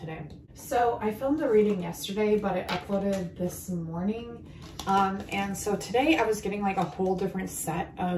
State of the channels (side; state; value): both; identical; correlation 1.00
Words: So I filmed a reading yesterday, but I uploaded this morning. And so today I was getting like a whole different set